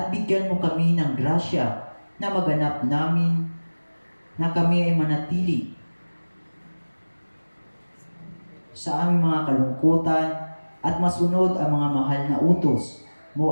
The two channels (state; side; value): inverted; both; correlation -1.00